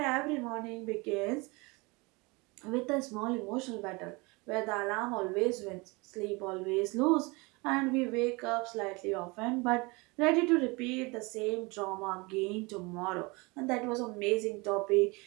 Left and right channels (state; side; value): quieter; left; 26.3 dB